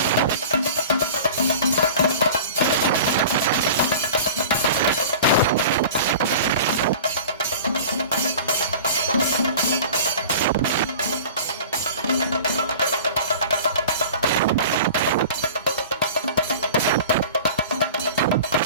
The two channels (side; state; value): both; inverted; correlation -0.39